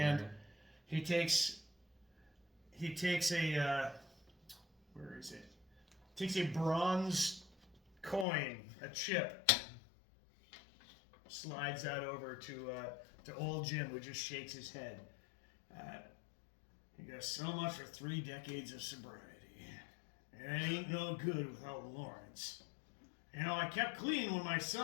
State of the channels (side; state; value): right; drops out; at 8.2 s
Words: he takes a where is it? Takes a bronze coin, a chip, slides that over to old Jim, who just shakes his head. He goes, "So much for 3 decades of sobriety. It ain't no good without Lawrence. I kept clean when my